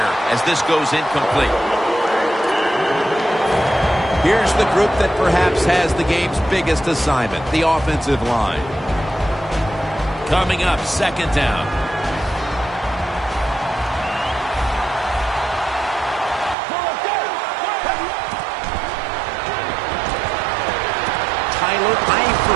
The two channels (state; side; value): drops out; left; at 16.6 s